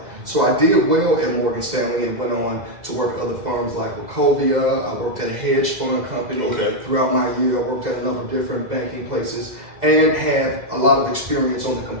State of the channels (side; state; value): left; late; 2.0 ms